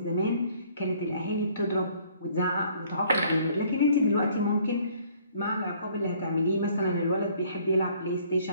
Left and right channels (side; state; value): both; inverted; correlation -0.60